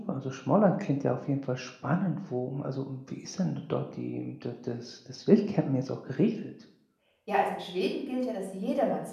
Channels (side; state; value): both; identical; correlation 1.00